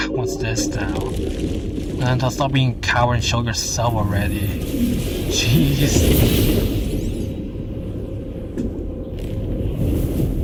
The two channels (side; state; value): both; identical; correlation 1.00